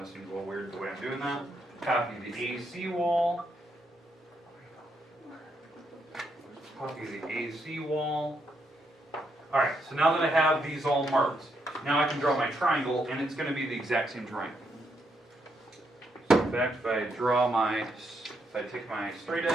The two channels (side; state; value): both; normal; correlation 0.78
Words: this seems a little weird the way I'm doing that. Copy the AC wall. Copy the AC wall. Alright, so now that I have these all marked, now I can draw my triangle, and it's going to be the exact same triangle. So in fact, if I take my straight